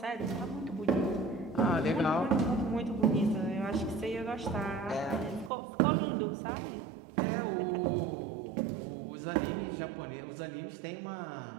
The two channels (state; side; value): drops out; left; at 5.5 s